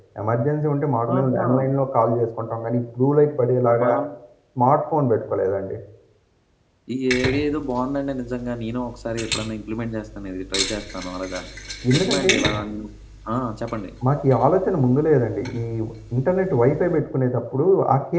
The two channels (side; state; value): both; identical; correlation 1.00